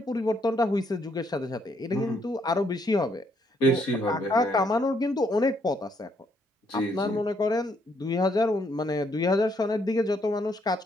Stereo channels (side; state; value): both; normal; correlation 0.71